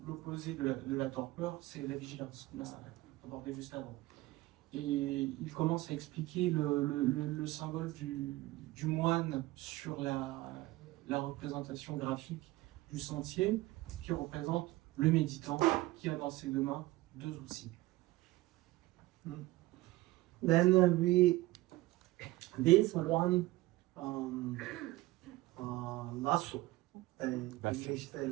l'opposé de la torpeur, c'est la vigilance, qu'on a abordé juste avant. Et il commence à expliquer le symbole du moine sur la représentation graphique du sentier, qui représente le méditant qui a dans ses 2 mains 2 outils. Then this one lasso, English say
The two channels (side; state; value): left; quieter; 18.8 dB